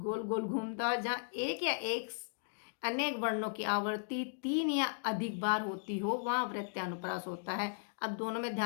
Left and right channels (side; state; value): right; silent; digital silence